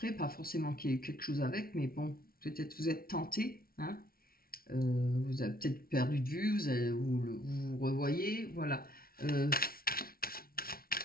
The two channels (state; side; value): late; right; 0.43 ms